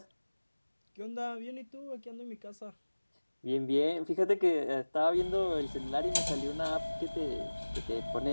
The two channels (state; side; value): inverted; both; correlation -1.00